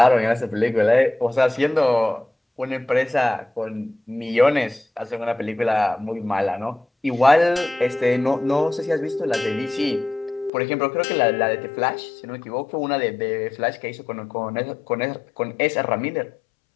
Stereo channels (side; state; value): right; drops out; at 10.5 s